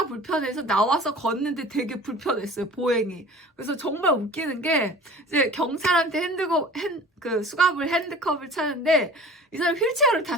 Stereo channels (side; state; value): both; normal; correlation 0.42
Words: 불편해서 나와서 걷는데 되게 불편했어요. 보행이. 그래서 정말 웃기는 게 이제 경찰한테 수갑을 핸드컵을 차는데 이 사람이 휠체어를